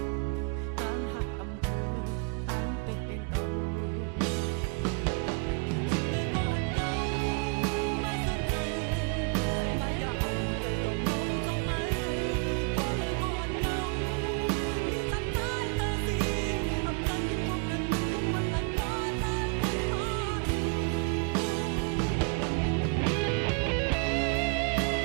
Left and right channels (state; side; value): quieter; left; 33.0 dB